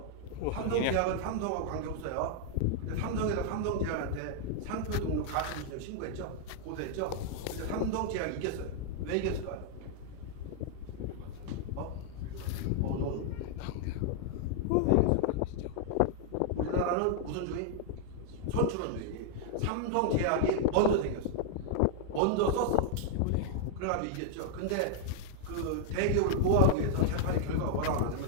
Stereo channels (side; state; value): both; different; correlation -0.01